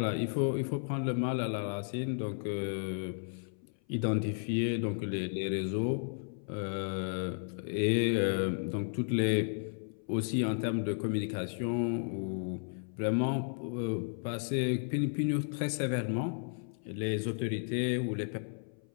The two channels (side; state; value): right; silent; 55 dB below the other